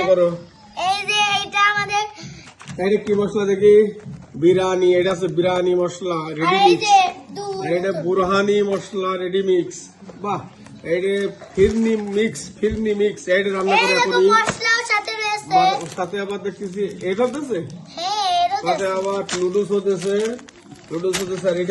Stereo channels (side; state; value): both; identical; correlation 1.00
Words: করো। এটা কি মশলা দেখি? বিরিয়ানি। এটা আছে বিরিয়ানি মশলা রেডি মিক্স। আর এটা বুরহানি মশলা রেডি মিক্স। বাহ, এটা ফিরনি মিক্স। এটা রান্না করে এখনই। সাথে আবার দেখতেছি এটা হতেছে, সাথে আবার নুডলস হতেছে। আর